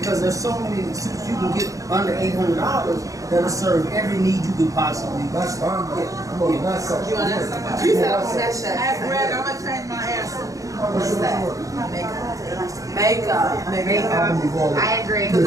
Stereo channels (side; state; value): left; late; 0.16 ms